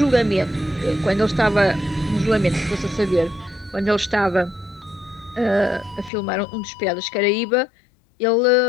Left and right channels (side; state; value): right; drops out; at 6.1 s